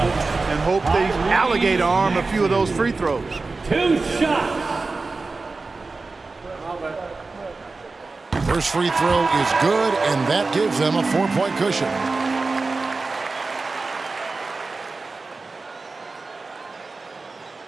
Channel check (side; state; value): left; quieter; 3.8 dB